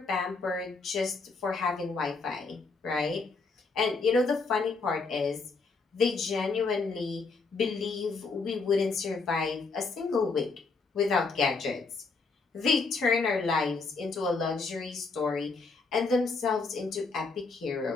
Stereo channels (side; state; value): right; quieter; 4.2 dB